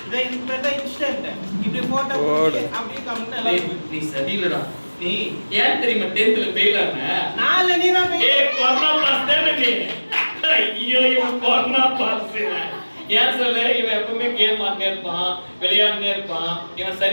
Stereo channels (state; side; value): inverted; both; correlation -1.00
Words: இதை இதுக்கு பேர் தான் இன்ஸ்டன்ட் இப்படி போட்டோ அப்படியே கமெண்ட் எல்லாம் நீ சரியில்லடா நீ ஏன் தெரியுமா 10th ல ஃபெயில் ஆன நாளை நீ தான் ஏய் கொரோனா பாஸ் தானே நீ ஐயோ இவன் கொரோனா பாஸ் ஏன் சொல்ல இவன் எப்பவுமே கேம் ஆடினே இருப்பான் விளையாடினே இருப்பான் இவன்